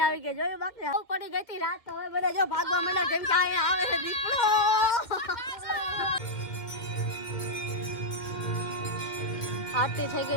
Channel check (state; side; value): late; right; 2.1 ms